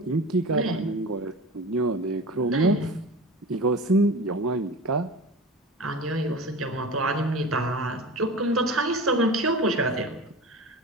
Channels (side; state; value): both; normal; correlation 0.33